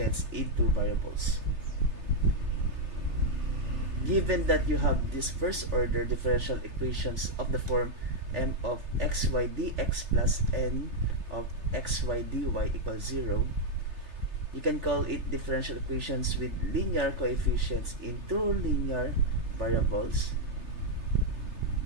in two variables. Given that you have this first order differential equations of the form m of xy dx plus n of xy dy equals 0, you can call it differential equations with linear coefficients in two linear variables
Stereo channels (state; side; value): late; left; 3.4 ms